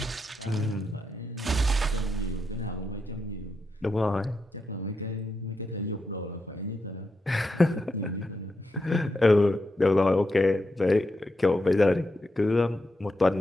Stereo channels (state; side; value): normal; both; correlation 0.85